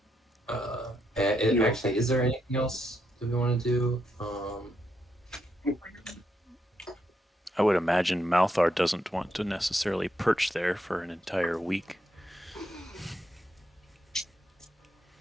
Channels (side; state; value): both; normal; correlation 0.79